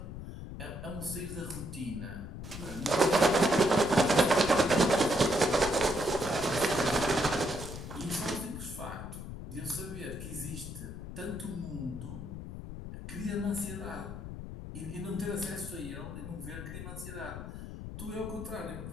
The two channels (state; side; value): noise; left; rumble, 9 dB below the sound